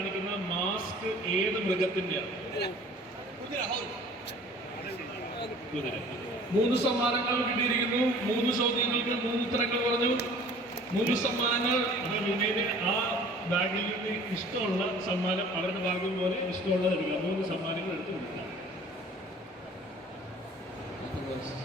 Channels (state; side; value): normal; both; correlation 0.49